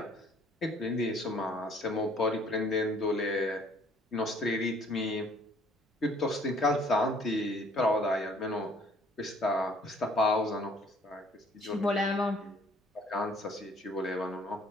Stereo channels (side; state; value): both; normal; correlation 0.59